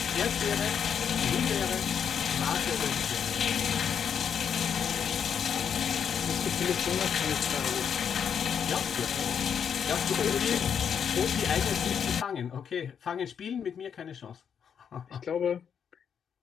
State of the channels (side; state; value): right; quieter; 7.6 dB